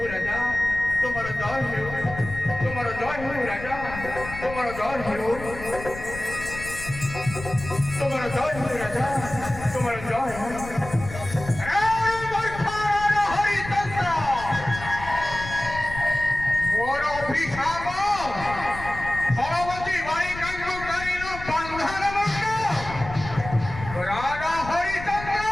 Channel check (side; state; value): left; noise; rumble, 11 dB below the sound